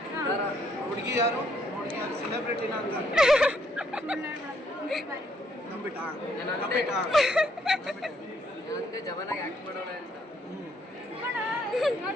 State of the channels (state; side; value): normal; both; correlation 0.70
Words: ಹುಡುಗಿ ಯಾರು ಸೆಲೆಬ್ರಿಟಿನ ಅಂತ ನಂಬಿಟ್ಟ ಜವನಾಗಿ ಆಕ್ಟ್ ಮಾಡೋಣ ಅಂತ.